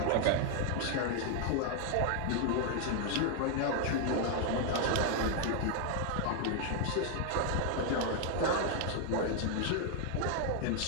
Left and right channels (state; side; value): different; both; correlation 0.00